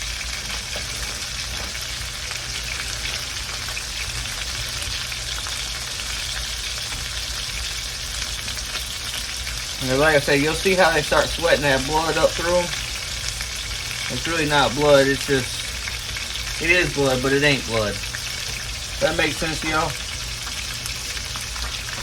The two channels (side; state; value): both; identical; correlation 1.00